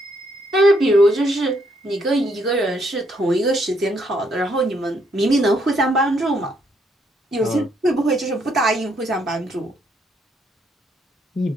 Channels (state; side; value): normal; both; correlation 0.73